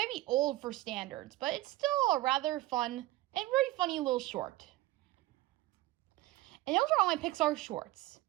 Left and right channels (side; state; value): left; quieter; 17.7 dB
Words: be old for standards, but it's still a rather fun and very funny little short. And those are all my Pixar shorts.